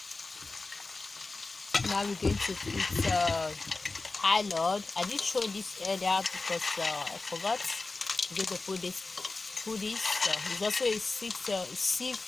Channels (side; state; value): right; quieter; 3.6 dB